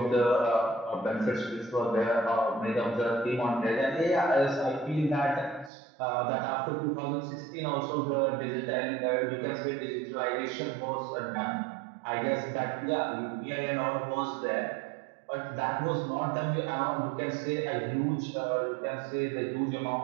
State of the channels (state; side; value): drops out; left; at 5.7 s